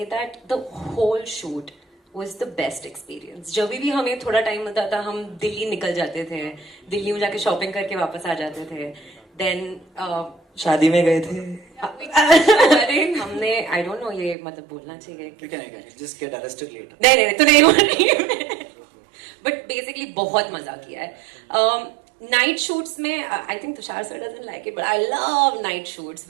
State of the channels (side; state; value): left; drops out; at 14.4 s